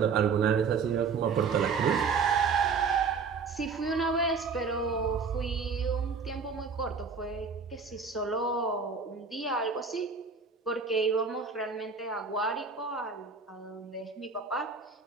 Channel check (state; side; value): quieter; left; 5.2 dB